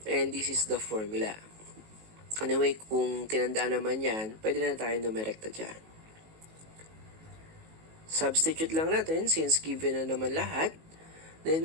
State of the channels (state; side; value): late; left; 19 ms